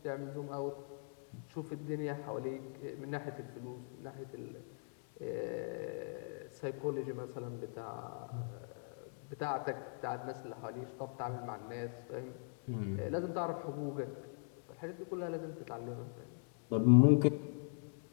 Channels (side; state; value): right; silent; digital silence